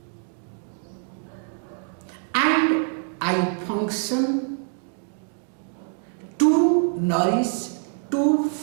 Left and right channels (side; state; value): left; silent; 58 dB below the other